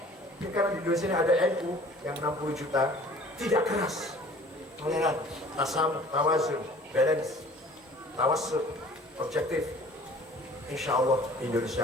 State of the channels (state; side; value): normal; both; correlation 0.49